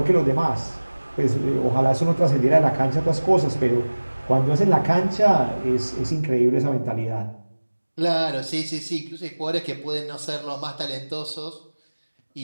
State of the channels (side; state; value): both; inverted; correlation -1.00